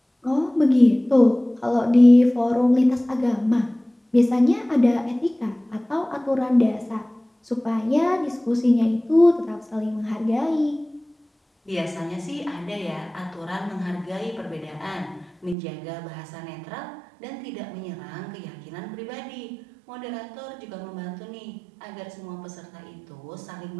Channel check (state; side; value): drops out; left; at 15.6 s